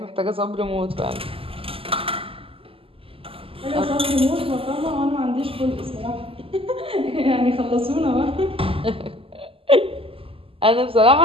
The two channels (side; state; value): left; late; 0.26 ms